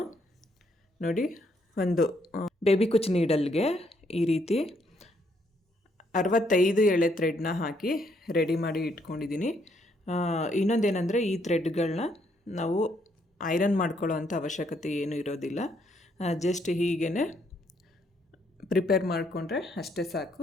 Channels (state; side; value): normal; both; correlation 0.72